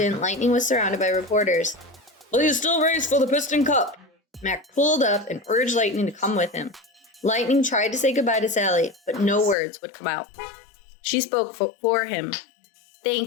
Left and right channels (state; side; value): drops out; right; at 9.6 s